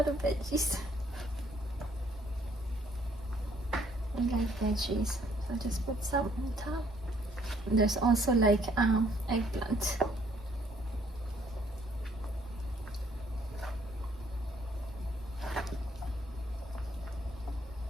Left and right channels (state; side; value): normal; both; correlation 0.65